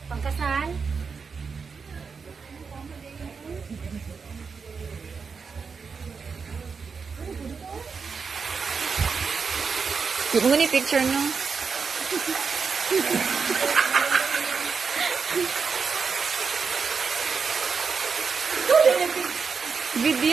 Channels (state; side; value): quieter; left; 5.4 dB